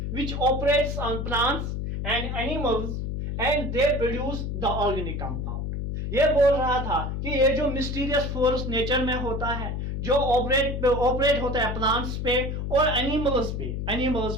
which operates on plants and animals and they produce the organic compound। ये बोल रहा था कि ये जो मिस्टीरियस फोर्स नेचर में होता है, जो ऑपरेट होता है प्लांट्स पे और एनिमल्स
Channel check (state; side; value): noise; left; hum, 3 dB below the sound